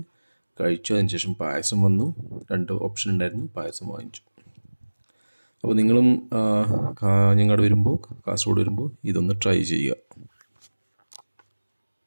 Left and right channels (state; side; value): inverted; both; correlation -1.00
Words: കഴിച്ചു. അതിനുശേഷം പായസം വന്നു. 2 ഓപ്ഷൻ ഉണ്ടായിരുന്നു, പായസം വാങ്ങിച്ചു. അപ്പോൾ നിങ്ങളും കാഞ്ഞങ്ങാട് വരുമ്പോൾ, കാസർഗോഡ് വരുമ്പോൾ ഇതൊന്ന് ട്രൈ ചെയ്യുക.